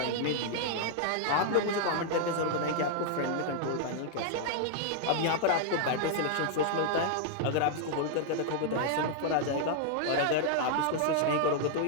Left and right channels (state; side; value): different; both; correlation -0.01